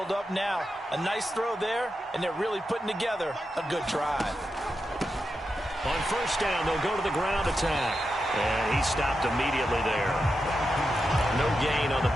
up now. A nice throw there, and they're really putting together a good drive. On first down, they'll go to the ground attack. And he stopped immediately there. No gain on the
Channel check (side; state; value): both; normal; correlation 0.88